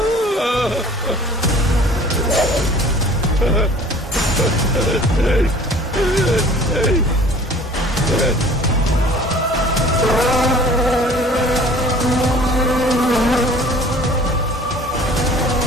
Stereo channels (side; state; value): both; normal; correlation 0.48